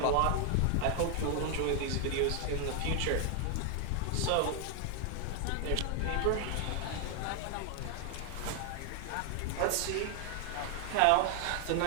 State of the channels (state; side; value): different; both; correlation 0.00